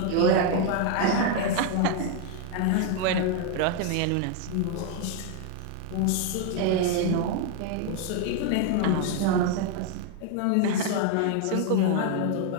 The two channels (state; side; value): different; both; correlation 0.01